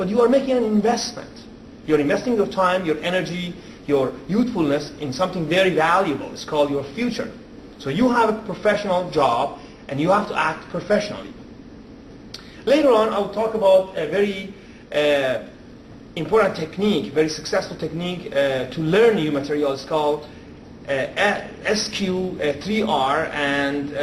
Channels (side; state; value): both; identical; correlation 1.00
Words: you are making an investment. You're investing your time, your energy, your youthfulness in something very valuable. It's called your future. So you have a professional job, and you have to act professionally. Later on, I will talk about a very important technique, very successful technique to learn new materials called SQ3R, and